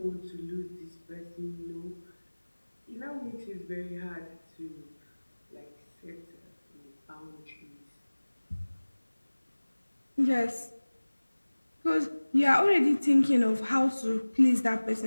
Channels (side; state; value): both; inverted; correlation -1.00